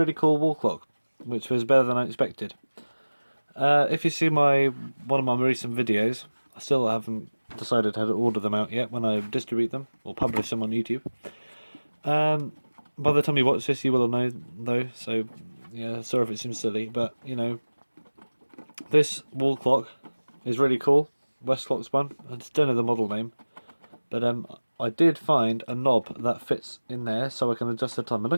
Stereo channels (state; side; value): inverted; both; correlation -1.00